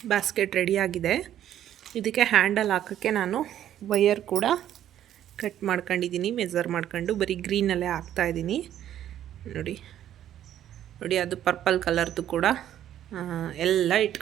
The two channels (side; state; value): left; quieter; 11.3 dB